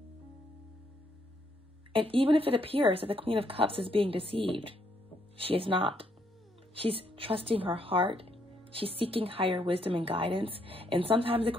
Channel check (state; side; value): normal; both; correlation 0.73